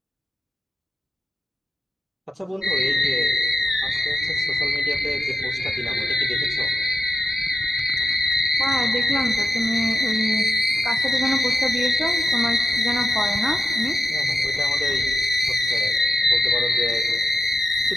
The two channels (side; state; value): both; normal; correlation 0.88